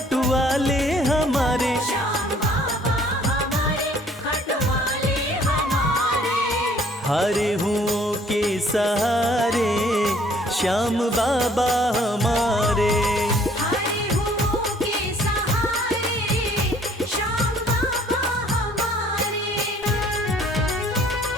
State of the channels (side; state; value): both; normal; correlation 0.59